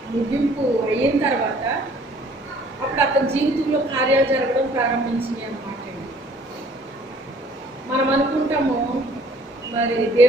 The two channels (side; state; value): both; normal; correlation 0.57